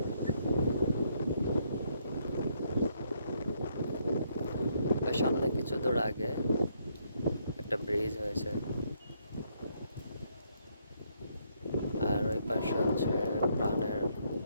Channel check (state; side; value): inverted; both; correlation -0.72